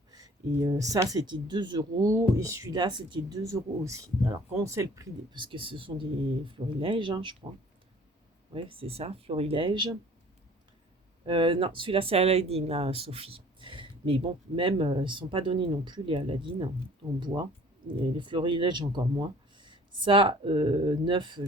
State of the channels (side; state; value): both; normal; correlation 0.51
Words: Et ça, c'était 2 €. Et celui-là, c'était 2 € aussi. Alors, quand on sait le prix, parce que ce sont des florilèges, hein, je crois. Ouais, c'est ça, florilège. Non, celui-là, c'est Aladdin, là, Sophie. Mais bon, même, ils ne sont pas donnés non plus, les Aladdin en bois. Et les florilèges, encore moins. Ça, neuf,